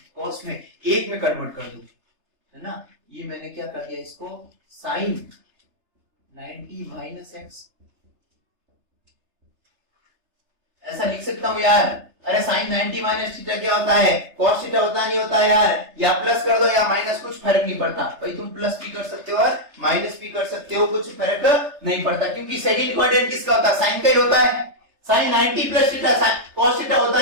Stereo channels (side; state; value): left; late; 3.3 ms